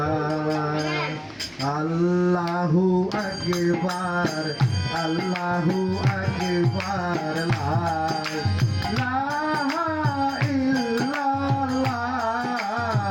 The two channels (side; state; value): both; identical; correlation 1.00